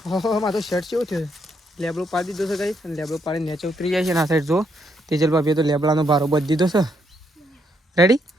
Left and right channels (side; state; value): both; normal; correlation 0.75